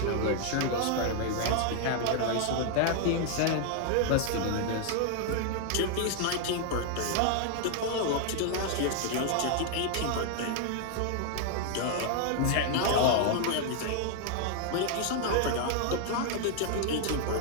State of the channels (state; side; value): different; both; correlation 0.00